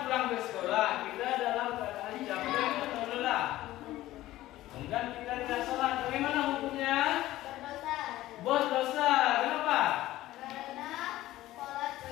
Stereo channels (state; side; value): quieter; right; 15.7 dB